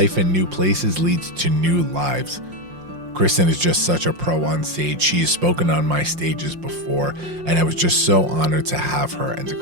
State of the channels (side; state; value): left; late; 5.6 ms